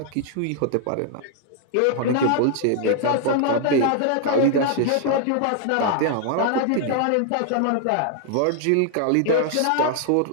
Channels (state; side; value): different; both; correlation 0.00